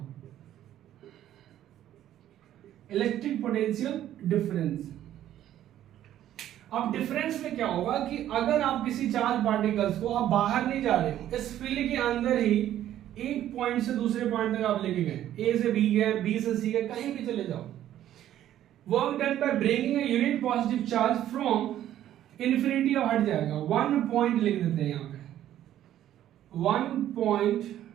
Electric potential difference. अब डिफरेंस में क्या होगा कि अगर आप किसी चार्ज पार्टिकल्स को, आप बाहर नहीं जा रहे हो, इस फील्ड के अंदर ही एक पॉइंट से दूसरे पॉइंट तक आप लेके गए, A से B गए, B से C गए, कहीं भी चले जाओ, work done by bringing a unit positive charge from infinity, अब हट जाएगा, 1 पॉइंट लिख देते हैं यहां पे, 1 point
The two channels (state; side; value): quieter; left; 12.0 dB